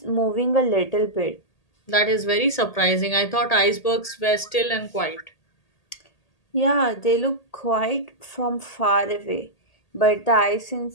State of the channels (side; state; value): right; late; 1.8 ms